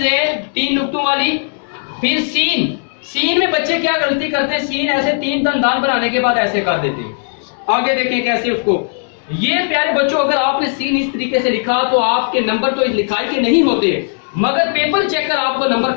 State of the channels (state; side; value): silent; right; 67 dB below the other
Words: दे 3 नुक्तों वाली, फिर सीन। सीन में बच्चे क्या गलती करते हैं, सीन ऐसे 3 दंदान बनाने के बाद ऐसे कर देते हैं। आगे देखें कैसे उसको। ये प्यारे बच्चों अगर आपने सीन इस तरीके से लिखा तो आपके नंबर तो लिखाई के नहीं होते, मगर पेपर चेकर आपको नंबर